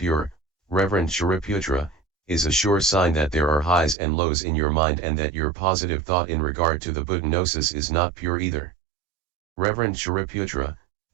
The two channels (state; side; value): drops out; left; at 4.0 s